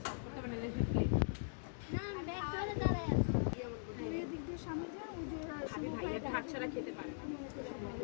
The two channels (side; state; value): right; silent; digital silence